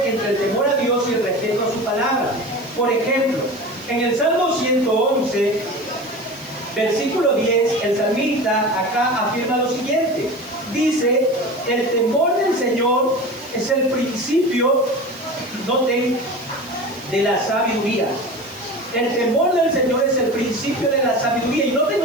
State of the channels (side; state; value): right; noise; hiss, 23 dB below the sound